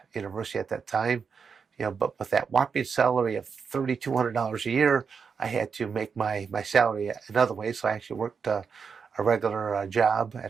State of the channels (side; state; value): left; quieter; 5.9 dB